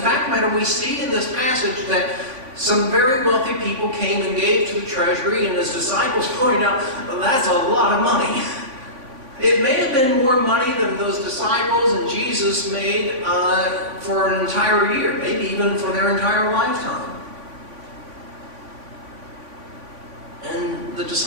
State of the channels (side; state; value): left; late; 3.5 ms